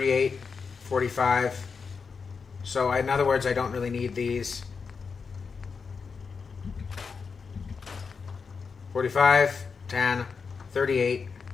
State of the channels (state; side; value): quieter; right; 5.3 dB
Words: 45. So in other words, I don't really need these. 45, 10, 38.